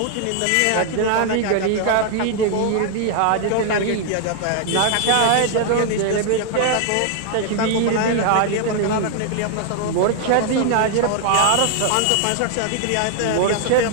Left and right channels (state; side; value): different; both; correlation 0.00